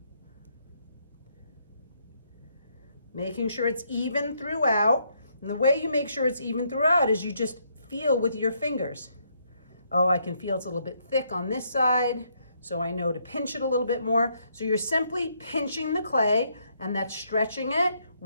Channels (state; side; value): inverted; both; correlation -0.73